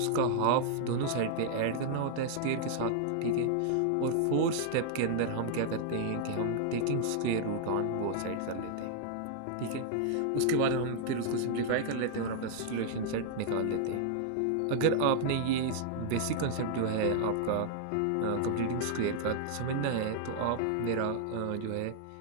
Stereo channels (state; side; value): different; both; correlation -0.01